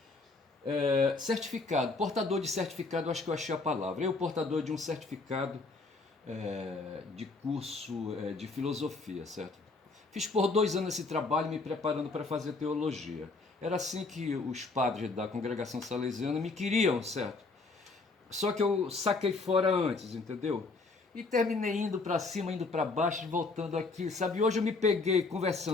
Certificado, portador de certificado, acho que eu achei a palavra. Eu, portador de um certificado de curso de filosofia, certo? Fiz por 2 anos esse trabalho me preparando para fazer teologia. Era assim que os padres da congregação salesiana me queriam, certo? Só que eu saquei fora antes, entendeu? E terminei indo para cima, indo para baixo, voltando aqui, sabe? Hoje eu me peguei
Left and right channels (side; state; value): right; quieter; 3.7 dB